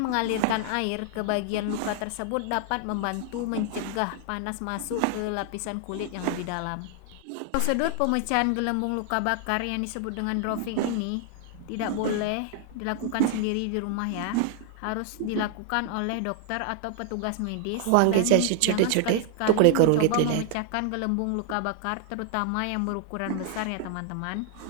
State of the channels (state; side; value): different; both; correlation 0.00